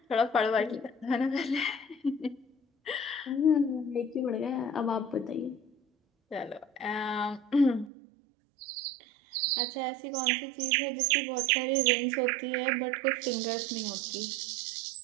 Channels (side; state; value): left; drops out; at 7.9 s